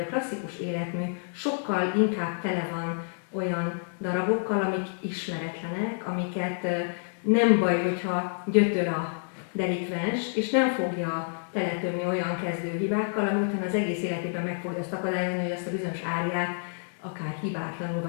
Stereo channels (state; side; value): silent; right; digital silence